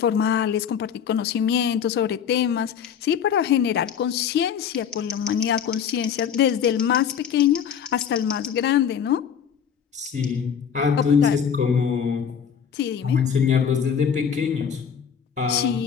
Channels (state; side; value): quieter; right; 7.8 dB